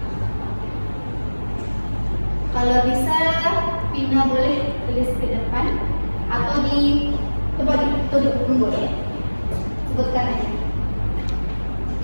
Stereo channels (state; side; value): inverted; both; correlation -1.00